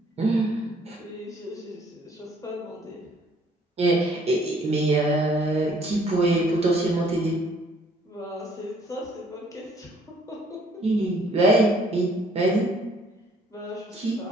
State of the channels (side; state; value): both; normal; correlation 0.62